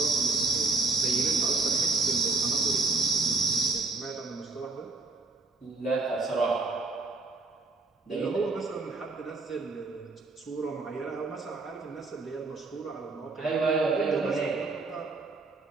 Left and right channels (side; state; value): left; quieter; 3.7 dB